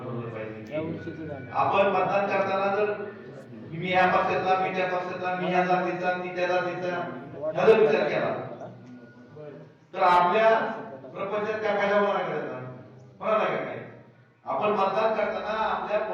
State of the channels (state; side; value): identical; both; correlation 1.00